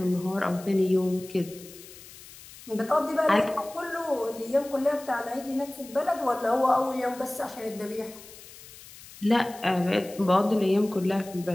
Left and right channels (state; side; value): noise; left; hiss, 18 dB below the sound